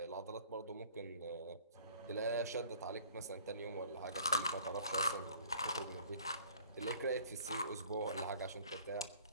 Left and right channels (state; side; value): inverted; both; correlation -0.52